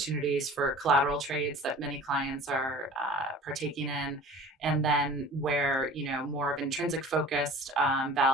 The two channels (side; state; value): both; normal; correlation 0.43